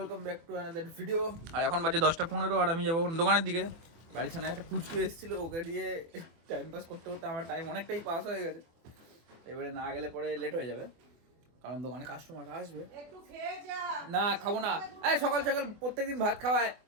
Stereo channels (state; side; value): late; left; 24 ms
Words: back to another video. আর এখন বাজে 10:15 আর আমি যাবো দোকানের দিকে। বাড়ির ছানা একটা পুচকু এসেছিল, ওকে দিয়ে টাইম পাস করতে করতে আমার টাইম অনেকটাই পাস হয়ে গেছে। এবারে না গেলে পরে লেট হয়ে যাবে, কারণ দোকানে কাস্টমার আসবে। একটু খেয়ে যা। না খাবো না। এই সকাল সকাল প্রত্যেকদিন ভাত খাওয়ায়।